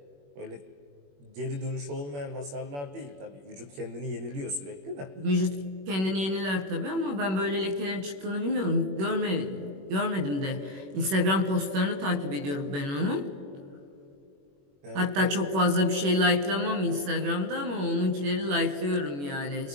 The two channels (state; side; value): late; left; 21 ms